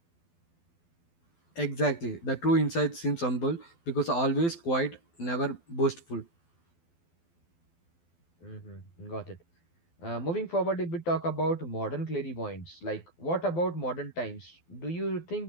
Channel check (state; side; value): late; right; 12 ms